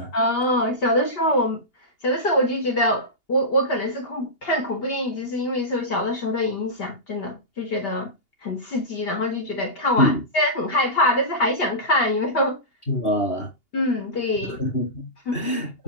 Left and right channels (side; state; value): right; late; 2.8 ms